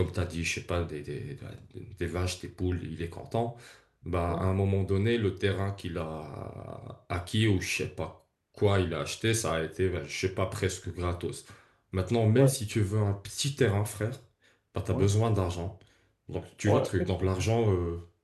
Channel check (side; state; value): both; identical; correlation 1.00